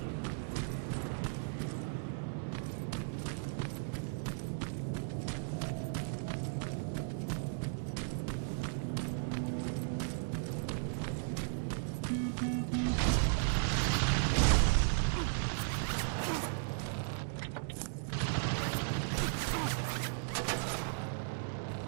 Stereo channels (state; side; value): silent; left; digital silence